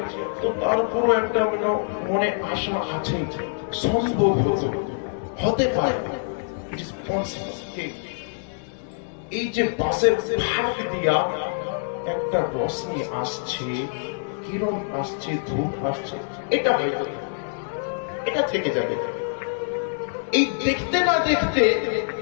তো তারপরও একটা মনে আশা আছে, সম্ভব হতে পারে। এই যে বাসের ভাগ দিয়া একটা রশ্মি আসছে, কিরণ আসছে, ধূপ আসছে, এটা হয়তো এটা থেকে যাবে। এই দেখতে না দেখতে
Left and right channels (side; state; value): right; silent; 62 dB below the other